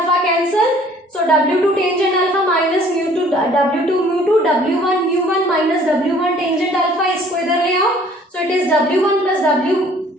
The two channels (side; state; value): both; normal; correlation 0.55